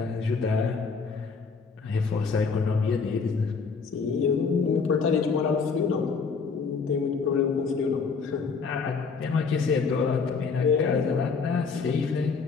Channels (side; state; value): right; quieter; 5.2 dB